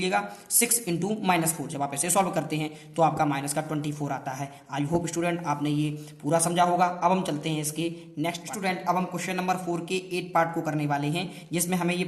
6 इंटू -4। जब आप इसे सॉल्व करते हैं तो आपका माइनस का 24 आता है। आई होप स्टूडेंट आपने ये पूरा समझा होगा। अब हम चलते हैं इसके नेक्स्ट। स्टूडेंट अब हम क्वेश्चन नंबर 4 के 8 पार्ट को करने वाले हैं, जिसमें हमें ये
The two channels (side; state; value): both; identical; correlation 1.00